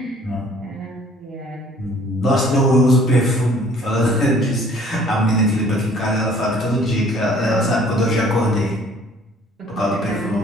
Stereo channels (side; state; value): both; normal; correlation 0.55